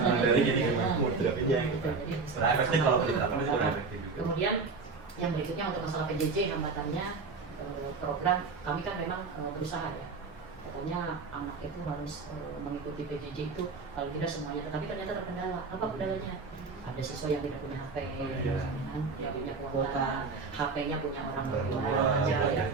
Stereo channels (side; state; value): left; quieter; 4.4 dB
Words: jadi moderatornya gitu. Sebenarnya efektif kalau diterapkan itu efektif juga. Kemudian yang berikutnya untuk masalah PJJ hambatannya, program kami kan memang berusaha ya. Katanya anak itu harus mengikuti PJJ itu kalau tidak semuanya, tapi ternyata terkendala. Apa kendalanya? Ada siswa yang tidak punya HP, yang punya kuota, HP-nya punya orang tua aja.